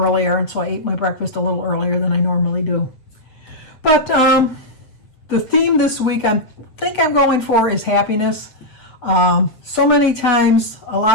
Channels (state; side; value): late; right; 7.8 ms